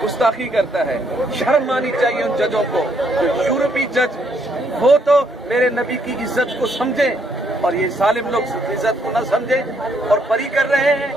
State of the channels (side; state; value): both; normal; correlation 0.71